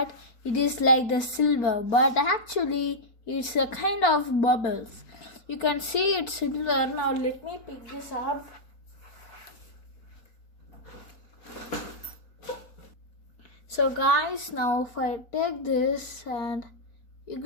it is like the silver, but actually it's a kind of bubbles. You can see it's silver. Now let me pick this up. So guys, now if I take this, and you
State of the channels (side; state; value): right; late; 4.4 ms